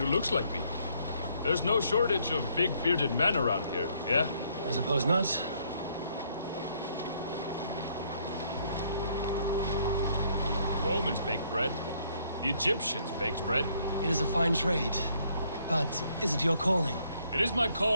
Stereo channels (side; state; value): both; inverted; correlation -0.68